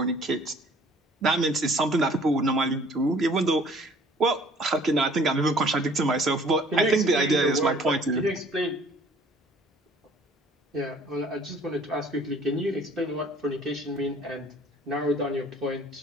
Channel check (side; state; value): both; normal; correlation 0.55